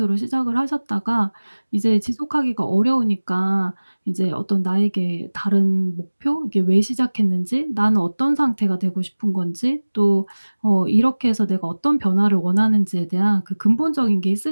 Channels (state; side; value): inverted; both; correlation -1.00